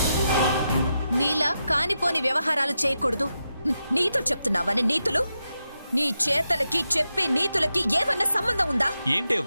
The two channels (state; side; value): inverted; both; correlation -0.87